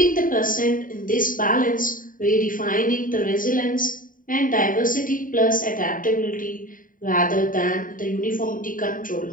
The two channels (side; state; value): right; late; 0.39 ms